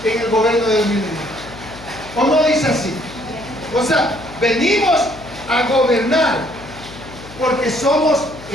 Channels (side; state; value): left; noise; hum, 17 dB below the sound